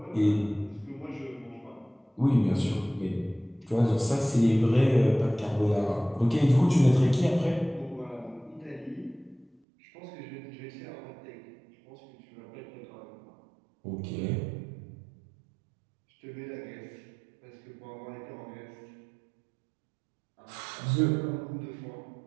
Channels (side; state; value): left; drops out; at 9.6 s